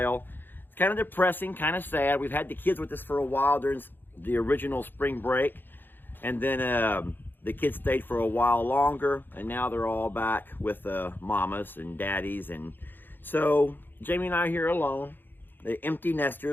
It's kind of depressing, kind of sad. We've had the kids with us for a while during the original spring break, and then the kids stayed for a while longer, and now they're all back with mamas and daddies. And so Jamie and I are here alone, the empty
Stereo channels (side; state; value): right; late; 0.095 ms